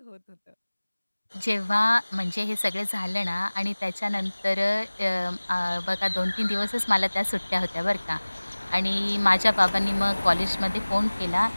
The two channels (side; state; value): both; inverted; correlation -1.00